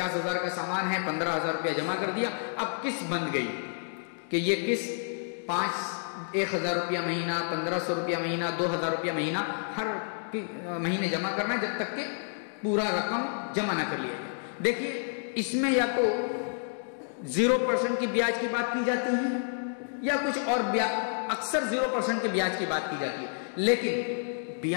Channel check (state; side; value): silent; right; digital silence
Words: کا سامان ہے, 15,000 روپیہ جمع کر دیا. اب قسط بن گئی کہ یہ قسط 1,000 روپیہ مہینہ, 1,500 روپیہ مہینہ, 2,000 روپیہ مہینہ ہر مہینے جمع کرنا ہے جب تک کہ پورا رقم جمع نہ کر لیا جائے. دیکھیے اس میں یا تو 0% کی بیاج کی بات کی جاتی ہے یا کچھ اور, اکثر 0% کے بیاج کی بات کی جاتی ہے. لیکن